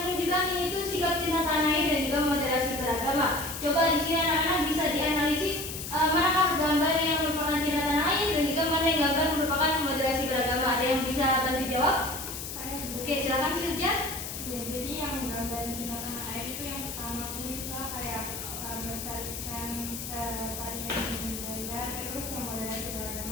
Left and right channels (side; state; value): left; noise; hiss, 8 dB below the sound